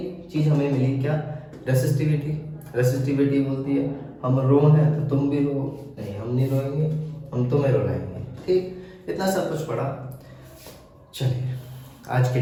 चीज हमें मिली, क्या? रेसिस्टिविटी। रेसिस्टिविटी बोलती है हम रो हैं तो तुम भी रो। नहीं, हम नहीं रोएंगे, हम तुम्हें रुलाएंगे। ठीक, इतना सब कुछ पढ़ा। चलिए आज के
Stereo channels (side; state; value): both; identical; correlation 1.00